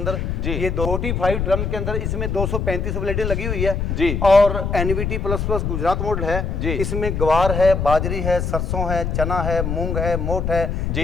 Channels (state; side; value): noise; left; rumble, 1 dB below the sound